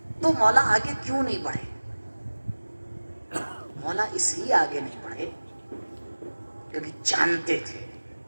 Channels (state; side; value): inverted; both; correlation -1.00